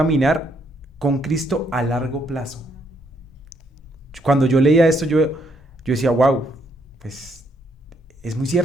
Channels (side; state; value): both; normal; correlation 0.72